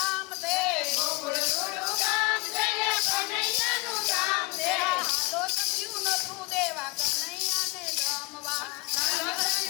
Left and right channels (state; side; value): quieter; right; 24.1 dB